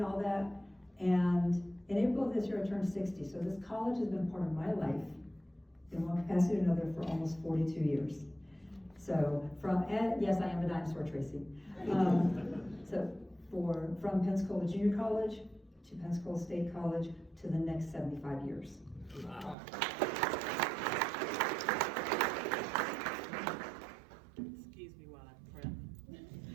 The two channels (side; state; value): left; drops out; at 19.6 s